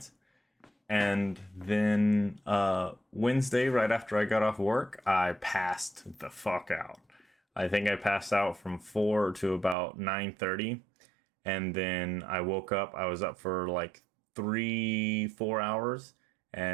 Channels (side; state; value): left; drops out; at 9.8 s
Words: And then Wednesday, right after I got off work, I passed the fuck out. I think I passed out from 4 to about 9:30. And then I woke up. I was up for like 3, 4 hours